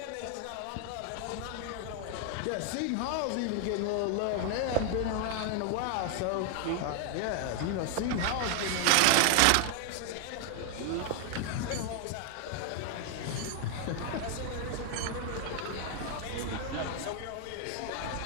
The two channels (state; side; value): different; both; correlation 0.00